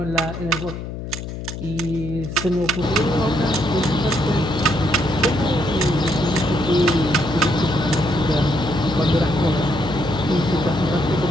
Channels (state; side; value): noise; left; hum, 8 dB below the sound